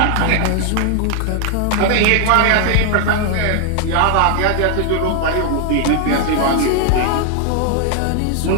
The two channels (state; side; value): different; both; correlation 0.00